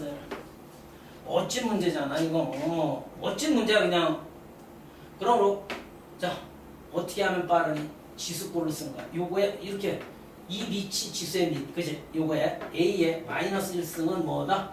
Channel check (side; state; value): both; identical; correlation 1.00